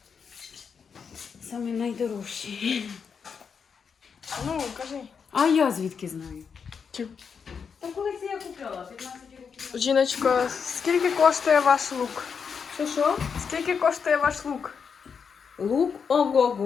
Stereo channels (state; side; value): quieter; right; 6.3 dB